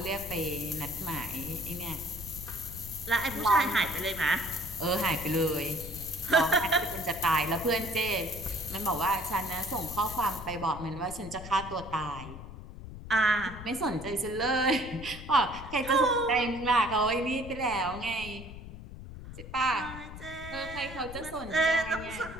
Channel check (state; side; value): noise; left; rumble, 12 dB below the sound